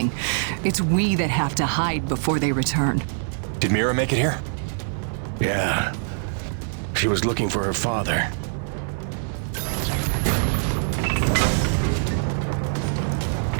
It's we that have to hide before they return. Did Mira make it here? Yeah. She was looking for her father.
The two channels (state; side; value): silent; left; 63 dB below the other